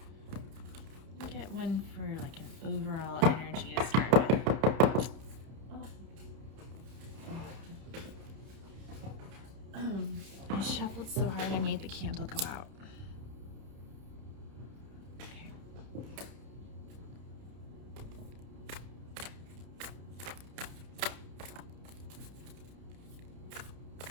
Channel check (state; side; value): late; left; 31 ms